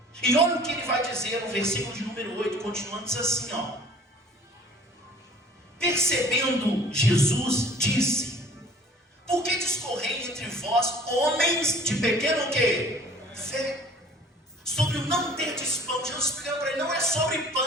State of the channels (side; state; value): both; normal; correlation 0.49